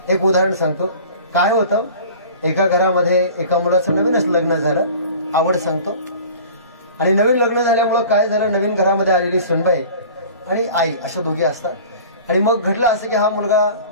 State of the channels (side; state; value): both; inverted; correlation -0.43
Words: एक उदाहरण सांगतो. काय होतं, एका घरामध्ये एका मुलाचं नवीनच लग्न झालं, आवड सांगतो. आणि नवीन लग्न झाल्यामुळं काय झालं, नवीन घरामध्ये आलेली सुनबाई आणि आई अशा दोघी असतात. आणि मग घडलं असं की हा मुलगा